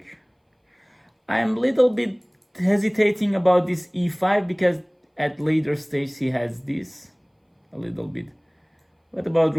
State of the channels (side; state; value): both; identical; correlation 1.00